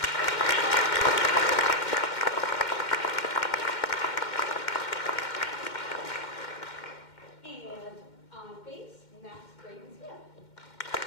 And on bass, Max Braden Smith.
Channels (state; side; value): late; right; 2.1 ms